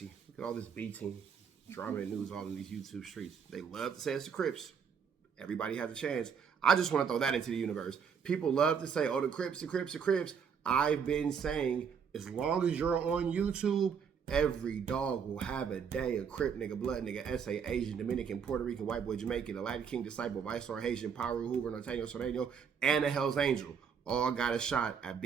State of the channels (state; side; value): quieter; left; 6.8 dB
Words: Look at all this B team drama and news all in these YouTube streets. They love to say it's the Crips. Everybody has a chance. I just want to throw that into the universe. People love to say, oh, the Crips, the Crips, the Crips. I've been saying, as long as you're on YouTube, every dog will have a day. A Crip nigga, blood nigga, SA, Asian, Dominican, Puerto Rican, white boy, Jamaican, the Latin King, disciple, Viceroy, Haitian, Paru, Hoover, Norteño, Soreno, and a Hell's Angel. All got a shot at